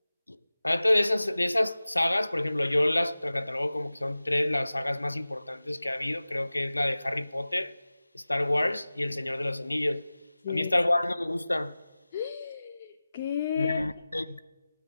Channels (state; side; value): inverted; both; correlation -0.97